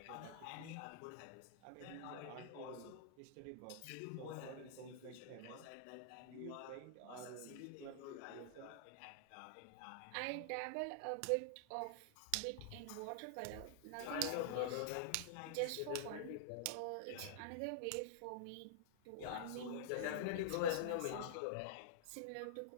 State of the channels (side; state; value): both; different; correlation -0.02